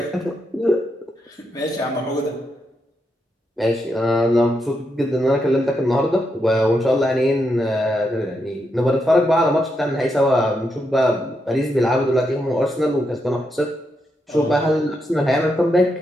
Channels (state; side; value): normal; both; correlation 0.82